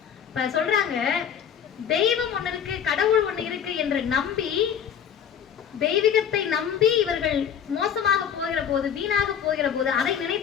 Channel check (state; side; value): quieter; right; 8.3 dB